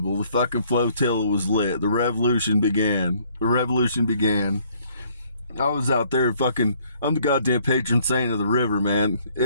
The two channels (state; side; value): inverted; both; correlation -0.63